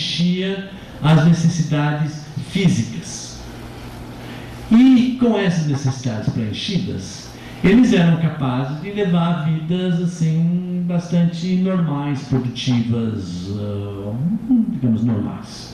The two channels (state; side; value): identical; both; correlation 1.00